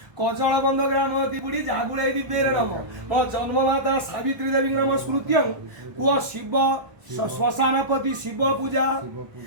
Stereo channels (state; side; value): late; left; 1.2 ms